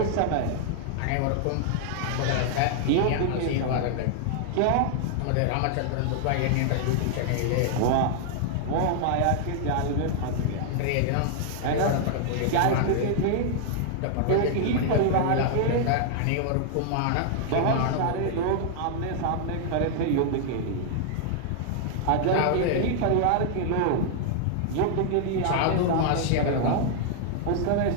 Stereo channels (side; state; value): both; different; correlation 0.00